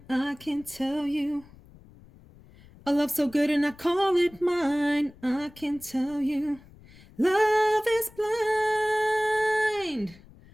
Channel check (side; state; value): left; noise; rumble, 24 dB below the sound